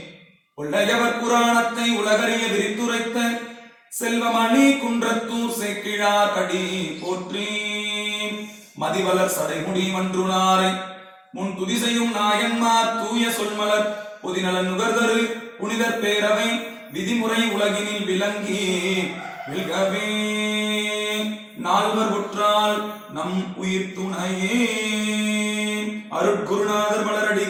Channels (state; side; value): identical; both; correlation 1.00